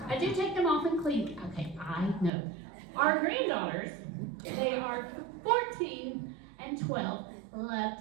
I do take them off and clean. Okay, I know. Our granddaughters, they are 14 and 12, love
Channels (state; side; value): drops out; left; at 2.3 s